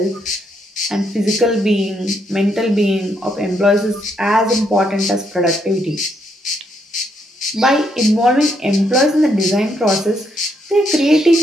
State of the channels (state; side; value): normal; both; correlation 0.75